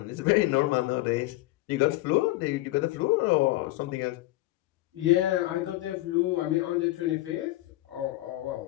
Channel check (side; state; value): right; quieter; 17.9 dB